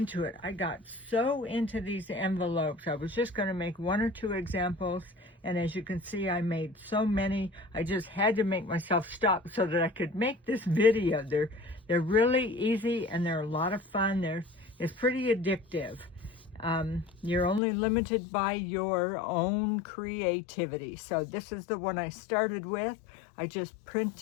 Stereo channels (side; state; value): right; drops out; at 17.6 s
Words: it. I got so into these envelopes. I was just going to make one or two examples, and as you can see, I made so many. I just had to make myself stop so that I could make this video. They're really easy and they're a lot of fun. It's pretty addictive. You're only limited by your own creativity. So this is the one I started with. I just